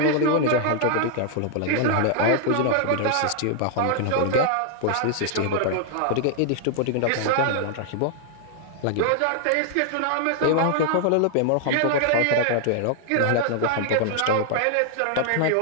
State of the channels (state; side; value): different; both; correlation 0.00